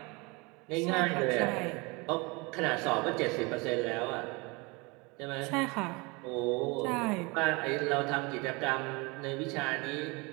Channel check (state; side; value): quieter; left; 27.2 dB